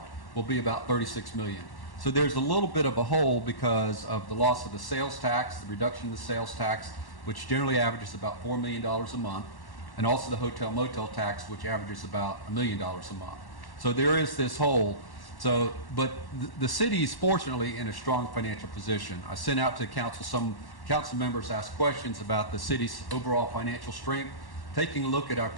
will be about $36 million. So there's a little bit of a hole because of the loss of the sales tax, the reduction of the sales tax, which generally averages about $4 million a month, and also the hotel motel tax, which averages about $1 million a month. So there is this hole. So, but the city is fortunately in a strong financial position. I sent out to council, some council members asked questions about the city's overall financial strength. Taking a look at our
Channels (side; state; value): right; late; 1.1 ms